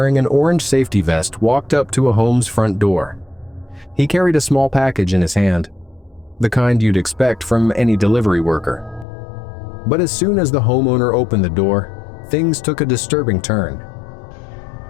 an orange safety vest walked up to a home's front door. He carried a small package in his hand, the kind you'd expect from any delivery worker. But as soon as the homeowner opened the door, things took a disturbing turn.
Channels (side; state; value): right; drops out; at 9.1 s